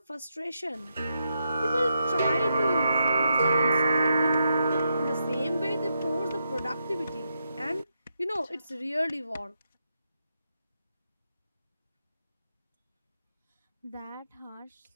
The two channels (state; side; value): inverted; both; correlation -0.83